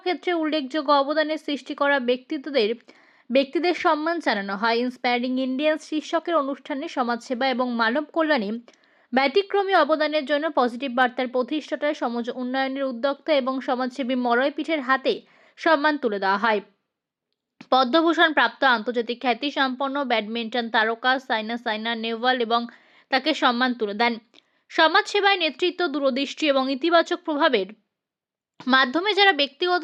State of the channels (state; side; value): identical; both; correlation 1.00